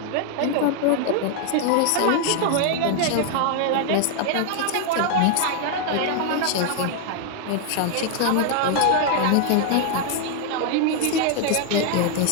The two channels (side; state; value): both; different; correlation 0.00